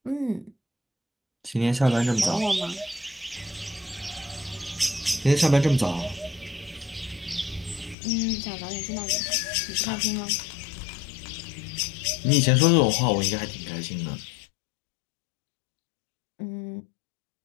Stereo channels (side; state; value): right; drops out; at 8.0 s